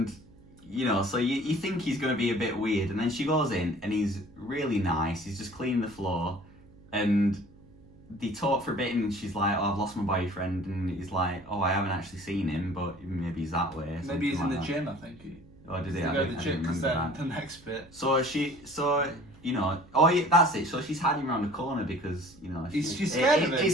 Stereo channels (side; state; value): right; noise; hum, 24 dB below the sound